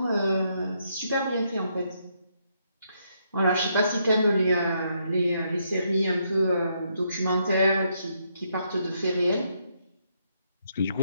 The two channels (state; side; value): inverted; both; correlation -0.75